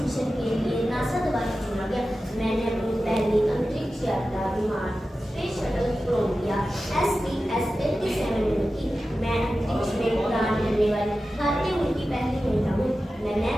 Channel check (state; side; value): normal; both; correlation 0.94